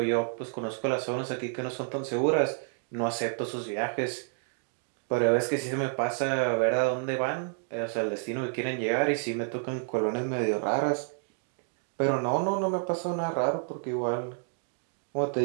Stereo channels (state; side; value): silent; left; 58 dB below the other